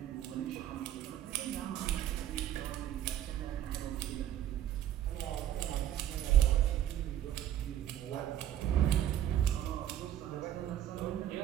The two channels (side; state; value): left; quieter; 11.4 dB